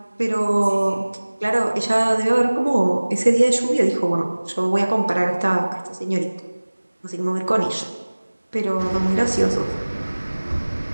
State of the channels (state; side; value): inverted; both; correlation -1.00